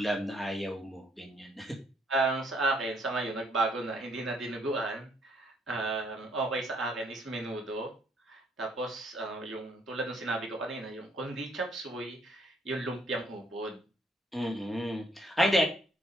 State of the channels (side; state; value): both; normal; correlation 0.68